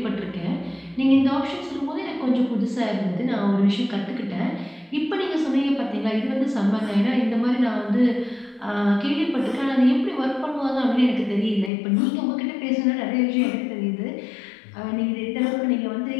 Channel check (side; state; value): right; drops out; at 11.7 s